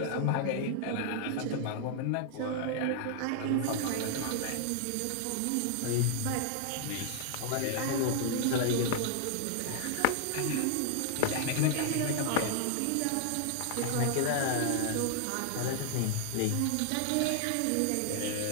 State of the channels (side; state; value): both; different; correlation 0.00